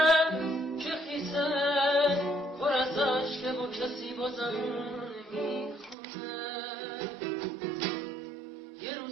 که خیسه پر از عشقه و کسی بازم میخونه یه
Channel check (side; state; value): left; drops out; at 6.0 s